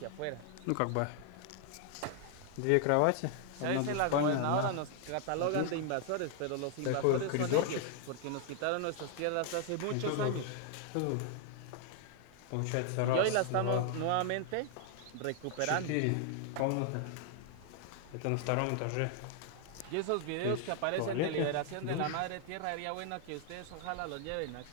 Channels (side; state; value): both; different; correlation 0.00